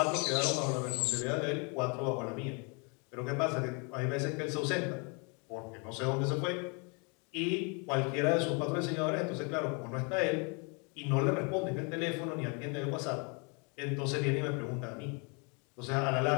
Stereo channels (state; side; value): quieter; right; 33.7 dB